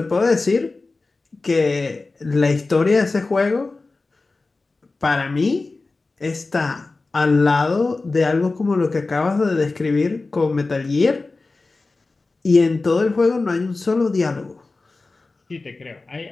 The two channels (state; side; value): quieter; right; 3.5 dB